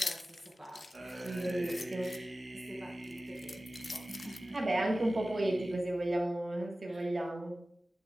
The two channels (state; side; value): normal; both; correlation 0.96